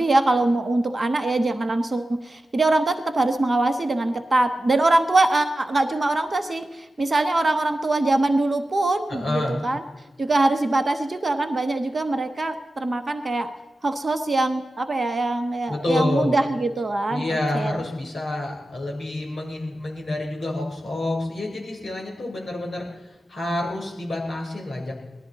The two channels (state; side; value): normal; both; correlation 0.93